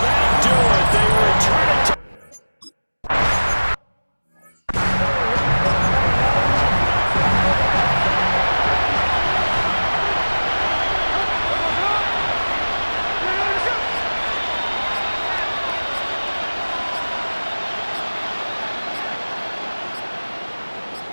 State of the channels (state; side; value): inverted; both; correlation -1.00